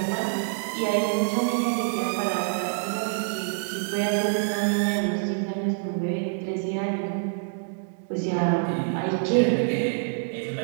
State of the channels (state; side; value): silent; left; digital silence